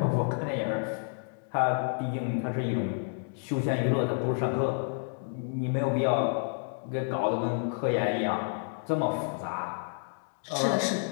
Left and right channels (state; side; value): silent; right; 58 dB below the other